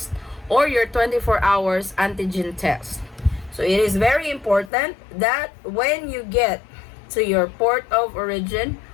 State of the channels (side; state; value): right; drops out; at 4.7 s